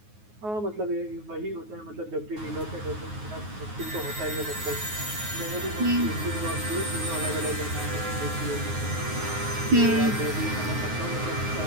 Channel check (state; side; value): late; left; 9.5 ms